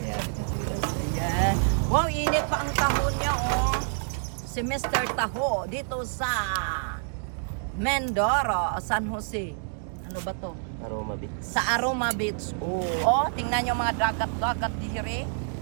itong ulas? Ayan. Wow, init pa ang taho niya, oh. Si Mr. Taho dito sa Mindoro, San Jose. Ano ba to? Aroma Beach. Sa Aroma Beach. Oh, tingnan nyo mga dagat-dagat dihiri.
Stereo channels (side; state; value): left; silent; digital silence